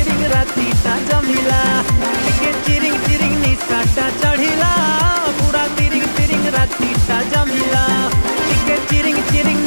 रातीटा जमिला टिके चिरिंग चिरिंग निसाटा चढ़िला पूरा तिरिंग तिरिंग रातीटा जमिला टिके चिरिंग चिरिंग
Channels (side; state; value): both; inverted; correlation -1.00